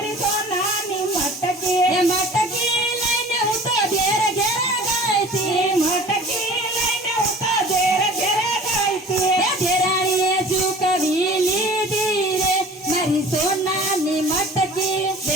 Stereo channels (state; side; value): normal; both; correlation 0.44